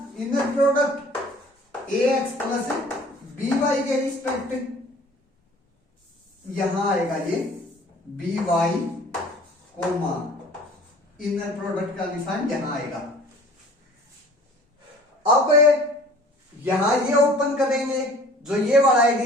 inner product ax plus by के रिस्पेक्ट। यहां आएगा ये by कोमा इनर प्रोडक्ट का निशान यहां आएगा। अब यहां ये ओपन करेंगे, जो ये वाला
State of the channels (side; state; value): both; normal; correlation 0.49